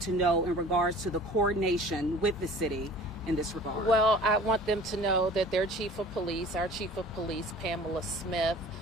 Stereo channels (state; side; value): normal; both; correlation 0.45